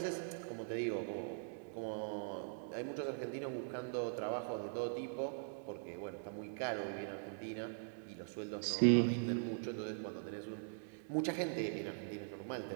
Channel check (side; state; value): left; silent; digital silence